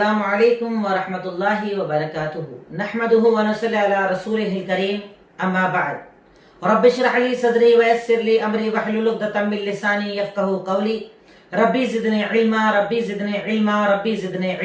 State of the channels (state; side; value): identical; both; correlation 1.00